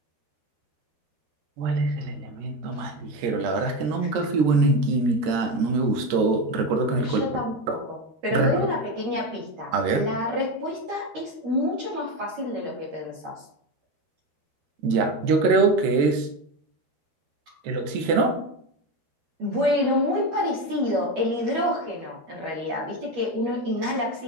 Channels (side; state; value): left; late; 13 ms